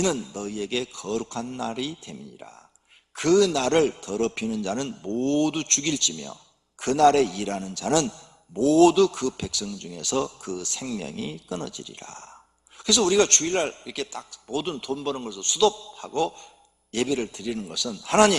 너희에게 거룩한 날이 됨이니라. 그 날을 더럽히는 자는 모두 죽일지며 그 날에 일하는 자는 모두 그 백성 중에서 그 생명이 끊어지리라. 그래서 우리가 주일날 이렇게 딱 모든 돈 버는 것을 수독하고 예배를 드리는 것은,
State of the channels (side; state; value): both; identical; correlation 1.00